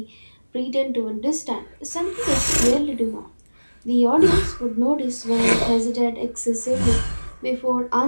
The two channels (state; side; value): inverted; both; correlation -1.00